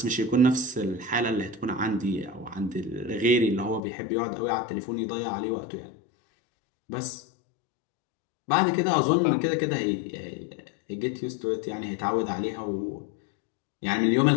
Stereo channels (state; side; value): drops out; right; at 3.8 s